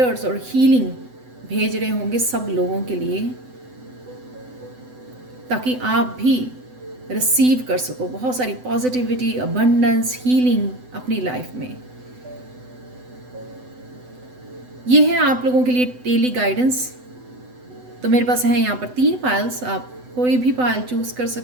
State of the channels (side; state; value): left; late; 7.9 ms